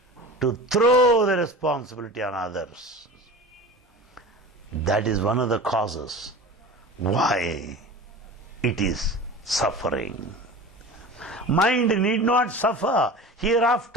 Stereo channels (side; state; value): both; normal; correlation 0.34